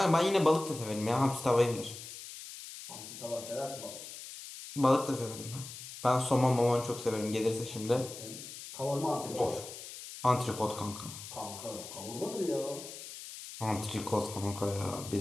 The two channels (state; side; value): noise; left; hiss, 12 dB below the sound